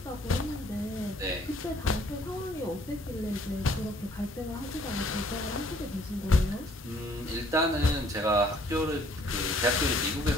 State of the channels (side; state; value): both; normal; correlation 0.60